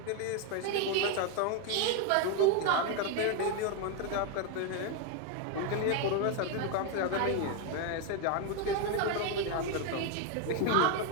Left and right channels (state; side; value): different; both; correlation 0.01